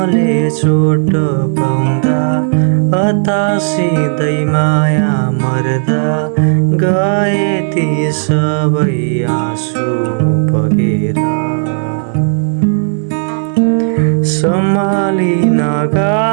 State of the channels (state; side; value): silent; left; digital silence